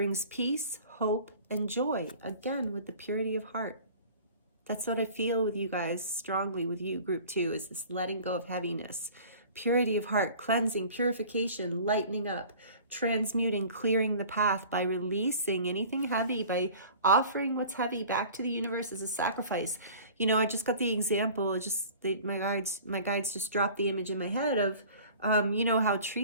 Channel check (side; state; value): both; inverted; correlation -0.44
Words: peace, hope, and joy. Again, with the purity of heart. That's what I feel with you guys, strongly with you, group 2, is this letting go of heaviness. Purity of heart, cleansing, purification, lightening up, transmuting, clearing the path by releasing anything heavy, by offering what's heavy back to the universe as a sacrifice. You know, I just got the example, my guides just dropped the image in my head of, you know, how